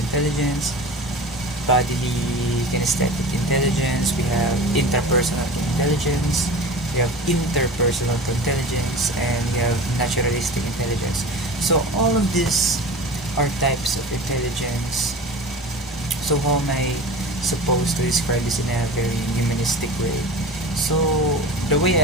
bodily kinesthetic intelligence, we have interpersonal intelligence, we have interpersonal intelligence, and we have naturalistic intelligence. So all of these are types of intelligence. So how am I supposed to describe this in a very humanistic way? So the way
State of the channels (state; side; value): normal; both; correlation 0.34